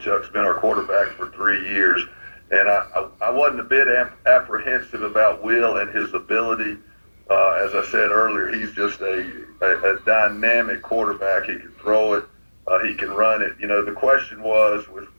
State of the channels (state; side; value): inverted; both; correlation -1.00